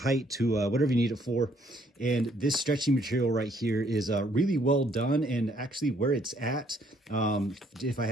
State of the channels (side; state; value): both; normal; correlation 0.66